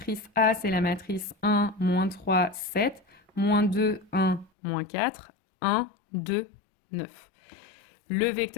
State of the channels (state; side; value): drops out; right; at 4.5 s